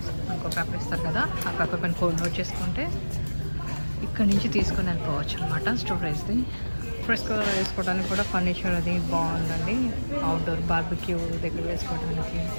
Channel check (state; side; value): inverted; both; correlation -1.00